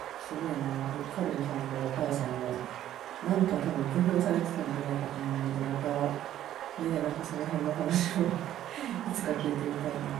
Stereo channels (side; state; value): left; quieter; 12.1 dB